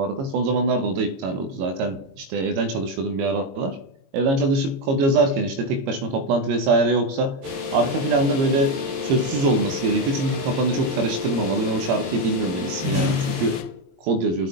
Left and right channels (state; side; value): late; left; 22 ms